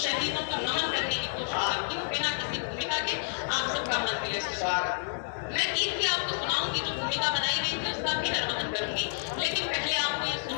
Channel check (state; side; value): silent; right; 58 dB below the other